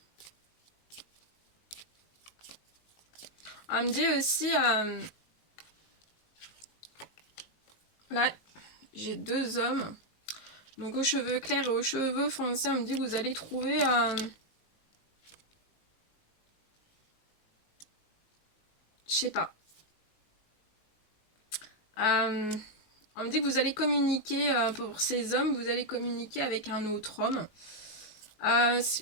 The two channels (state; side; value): late; right; 19 ms